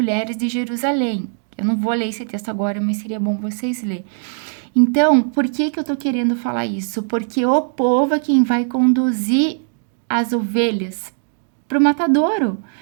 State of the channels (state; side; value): silent; left; digital silence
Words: de Jerusalém. Eu não vou ler esse texto agora, mas seria bom vocês lerem. Então, por que que eu tô querendo falar isso? Porque o povo é quem vai conduzir as ovelhas pro matadouro,